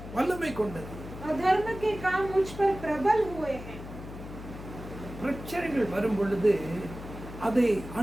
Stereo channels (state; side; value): noise; left; hum, 12 dB below the sound